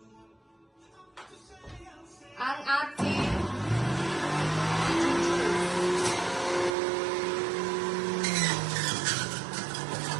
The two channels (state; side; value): drops out; left; at 6.8 s